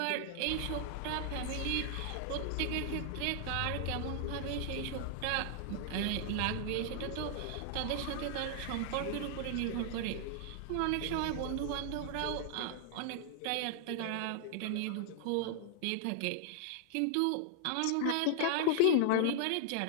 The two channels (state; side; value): different; both; correlation 0.00